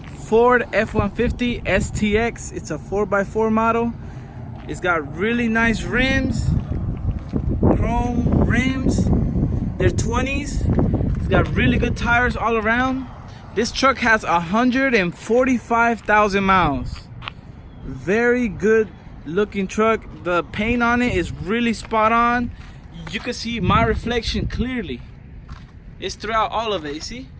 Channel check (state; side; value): identical; both; correlation 1.00